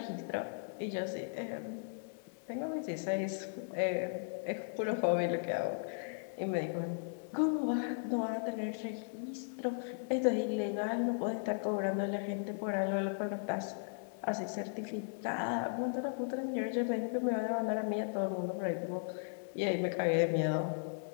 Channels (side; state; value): right; silent; digital silence